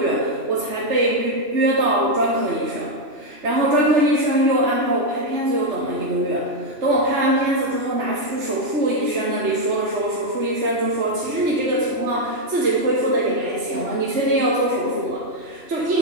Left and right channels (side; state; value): left; late; 2.9 ms